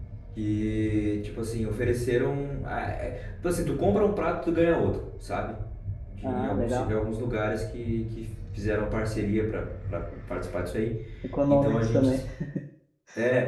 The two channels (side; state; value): both; identical; correlation 1.00